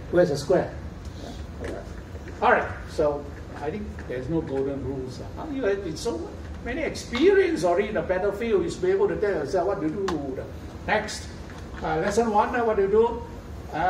Where's the square? All right. So I think there's no golden rules. You have so many experience already in the battlefield. You should be able to tell yourself what to do. Next, lesson 1. What do you do?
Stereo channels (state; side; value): identical; both; correlation 1.00